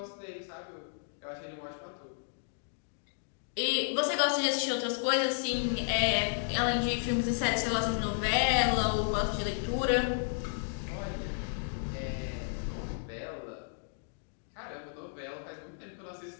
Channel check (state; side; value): silent; right; digital silence